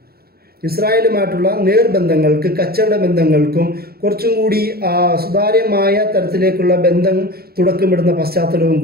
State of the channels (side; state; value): left; late; 0.45 ms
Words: ഇസ്രായേലുമായിട്ടുള്ള നേർബന്ധങ്ങൾക്ക്, കച്ചവട ബന്ധങ്ങൾക്കും കുറച്ചും കൂടി സുതാര്യമായ തരത്തിലേക്കുള്ള ബന്ധം തുടക്കമിടുന്ന പശ്ചാത്തലവും